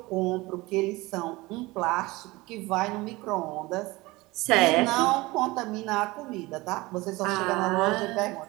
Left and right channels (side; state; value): left; quieter; 21.4 dB